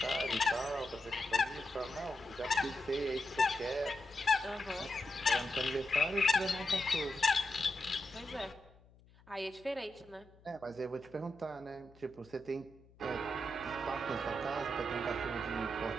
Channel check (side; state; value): left; noise; hum, 26 dB below the sound